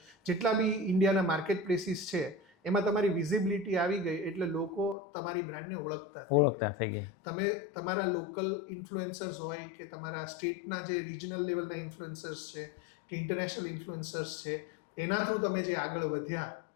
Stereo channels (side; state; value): right; drops out; at 5.0 s